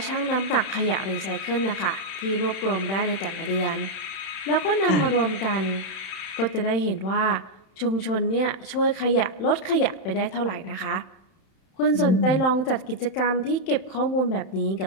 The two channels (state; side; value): late; right; 31 ms